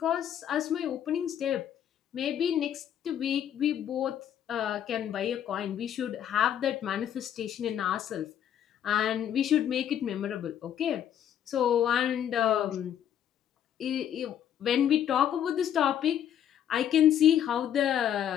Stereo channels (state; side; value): quieter; right; 10.0 dB